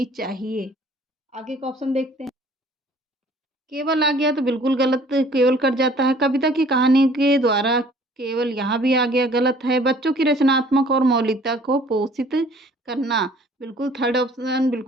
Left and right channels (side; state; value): both; normal; correlation 0.54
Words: चाहिए। आगे का ऑप्शन देखते हैं। केवल आ गया तो बिल्कुल गलत, केवल कट जाता है। कविता की कहानी के द्वारा केवल यहाँ भी आ गया, गलत है। बच्चों की रचनात्मक और मौलिकता को पोषित करना, बिल्कुल थर्ड ऑप्शन